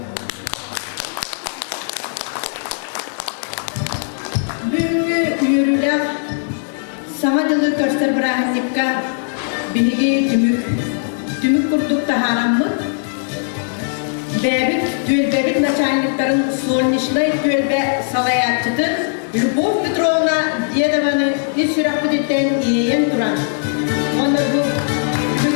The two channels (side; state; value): right; silent; digital silence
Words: Samadılı köster bıraktıkka bilgi tümük kurduk da haram mı? Bebit meşahinliklerin solnişli gölbe salayatçıdır. Любовь Петровна Дедованы из Сюрапудетен и Иен Туран. Он bu